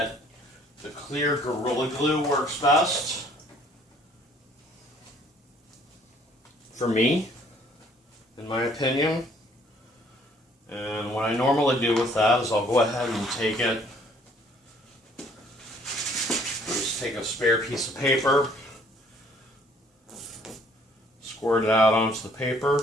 the clear Gorilla Glue works best for me, in my opinion. And what I normally do with that is I'll go ahead and take it, just take a spare piece of paper, squirt it out onto the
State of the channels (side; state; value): both; normal; correlation 0.60